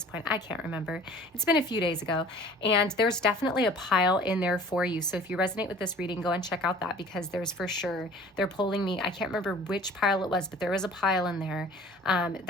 point. I can't remember. It's been a few days ago. And there's definitely a pile in there for you. So if you resonate with this reading, go and check out that, because there's for sure, they're pulling me. I can't remember which pile it was, but there was a pile in there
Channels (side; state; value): both; normal; correlation 0.47